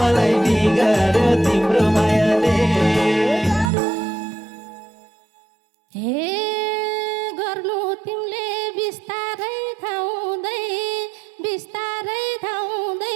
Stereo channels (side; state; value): left; drops out; at 3.7 s